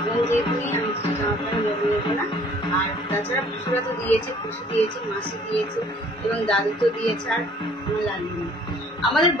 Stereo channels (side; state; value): both; normal; correlation 0.56